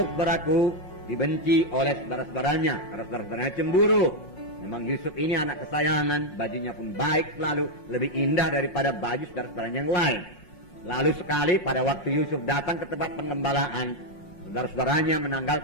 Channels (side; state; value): right; late; 5.6 ms